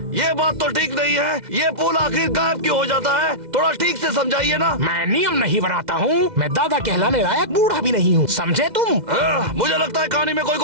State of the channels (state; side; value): late; left; 2.0 ms